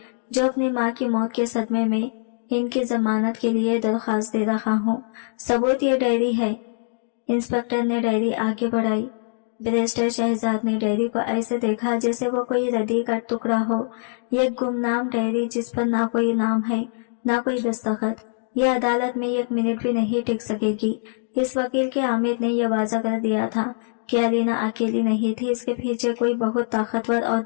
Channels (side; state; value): right; silent; digital silence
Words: जो अपनी माँ की मौत के सदमे में इनकी जमानत के लिए दरख्वास्त दे रहा हूँ। सबूत ये डायरी है। इंस्पेक्टर ने डायरी आगे बढ़ाई। बैरिस्टर शहजाद ने डायरी को ऐसे देखा जैसे वो कोई रद्दी का टुकड़ा हो। ये गुमनाम डायरी जिस पर ना कोई नाम है, ना कोई दस्तखत। यह अदालत में एक मिनट भी नहीं टिक सकेगी। इस वकील के आमिर ने यह वाजा कर दिया था कि अलीना अकेली नहीं थी। इसके पीछे कोई बहुत ताकतवर और